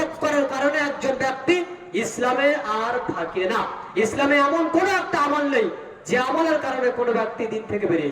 করার কারণে একজন ব্যক্তি ইসলামে আর থাকে না। ইসলামে এমন কোন একটা আমল নেই যে আমলের কারণে কোনো ব্যক্তি দিন থেকে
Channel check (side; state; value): both; identical; correlation 1.00